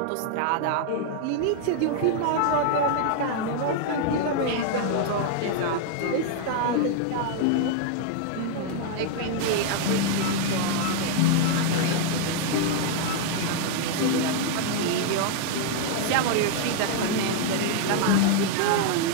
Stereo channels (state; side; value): different; both; correlation 0.00